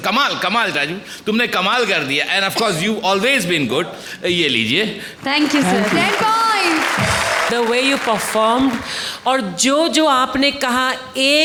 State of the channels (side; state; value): both; identical; correlation 1.00